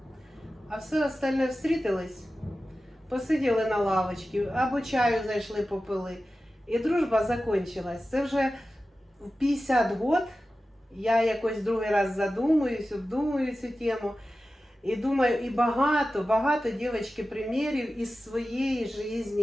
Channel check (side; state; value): both; normal; correlation 0.94